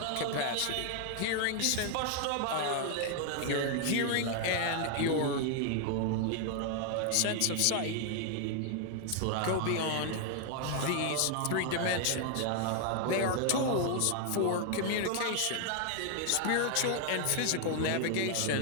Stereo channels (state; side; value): different; both; correlation 0.00